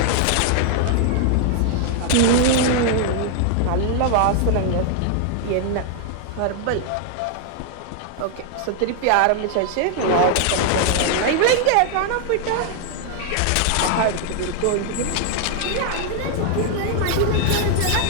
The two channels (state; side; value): different; both; correlation 0.00